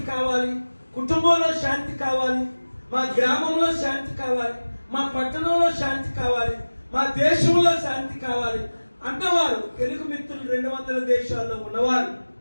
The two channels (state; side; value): inverted; both; correlation -1.00